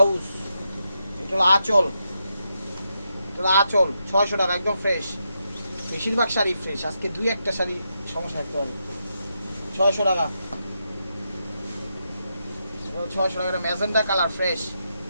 এটা হলো আঁচল, এটা হলো আঁচল 600 টাকা একদম ফ্রেশ। বেশিরভাগ শাড়ি ফ্রেশ, আজকে দুই একটা শাড়ি সমস্যা থাকতে হবে। 600 টাকা, 600 টাকা। এটা ম্যাজেন্টা কালার ফ্রেশ।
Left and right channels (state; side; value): inverted; both; correlation -0.83